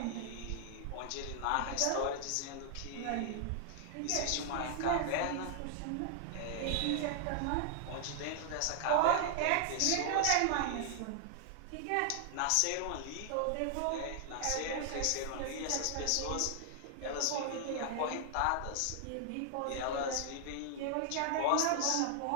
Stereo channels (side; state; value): both; different; correlation 0.00